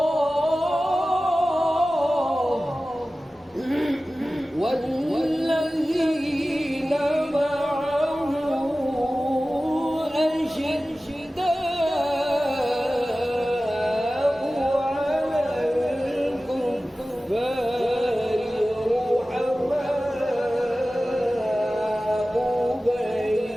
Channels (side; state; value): both; normal; correlation 0.96